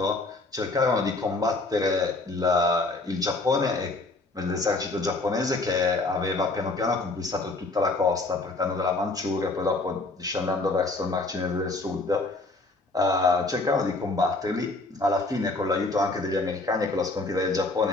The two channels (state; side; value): quieter; right; 3.2 dB